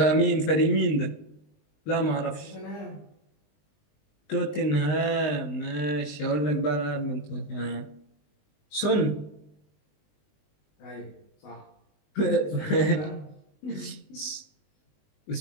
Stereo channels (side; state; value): right; late; 20 ms